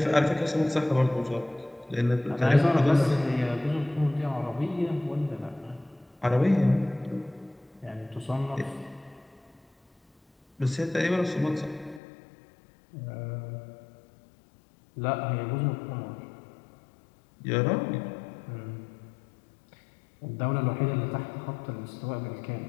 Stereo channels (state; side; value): drops out; right; at 12.0 s